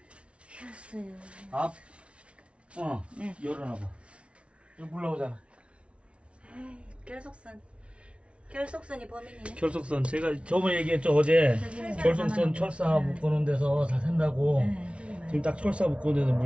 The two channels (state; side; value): late; left; 0.060 ms